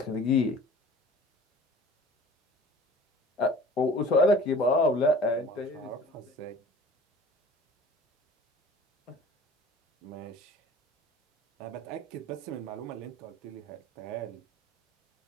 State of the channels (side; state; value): both; normal; correlation 0.44